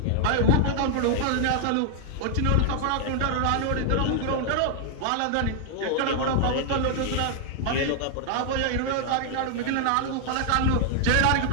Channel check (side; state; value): both; different; correlation 0.00